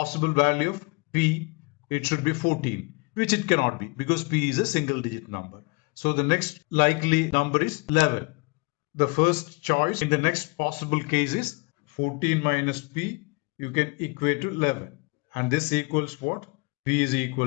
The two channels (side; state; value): right; quieter; 28.4 dB